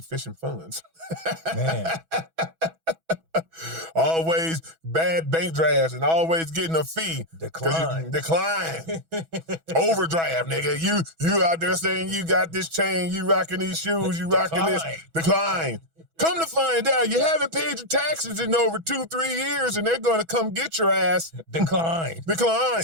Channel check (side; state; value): left; late; 6.1 ms